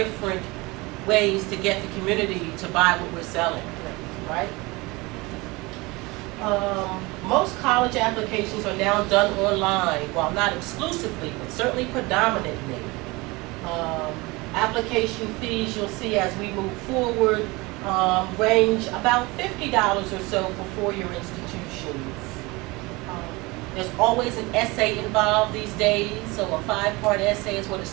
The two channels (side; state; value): left; quieter; 23.7 dB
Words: ways to get the community to buy what we're selling, right? Most college applications are now done online, while not exclusively, but certainly predominantly. Application fees, you'll see as we move forward, range about $50 or so for four-year institutions. There's always an essay involved these days, so a 5-part essay is what a